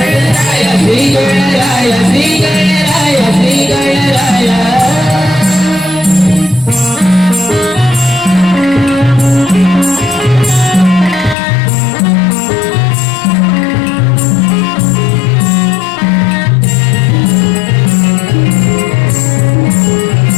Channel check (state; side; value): drops out; right; at 11.4 s